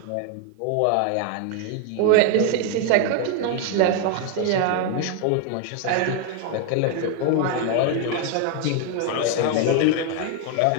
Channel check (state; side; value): different; both; correlation 0.01